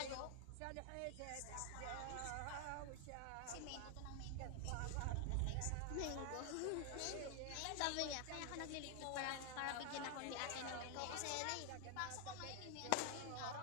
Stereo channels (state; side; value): different; both; correlation 0.00